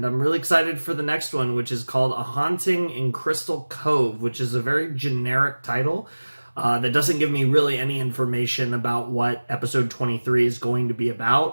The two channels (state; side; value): inverted; both; correlation -1.00